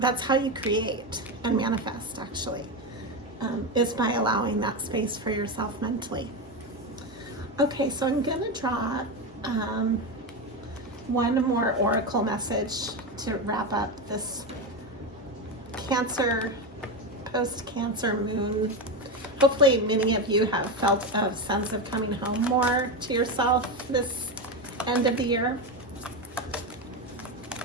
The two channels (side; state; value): both; normal; correlation 0.15